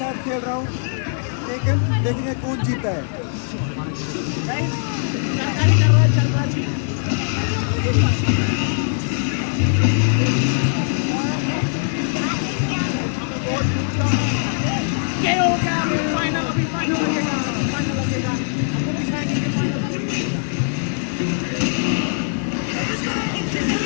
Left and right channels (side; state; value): right; silent; 65 dB below the other